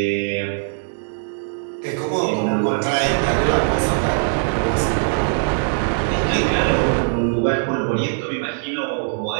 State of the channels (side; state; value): left; silent; 65 dB below the other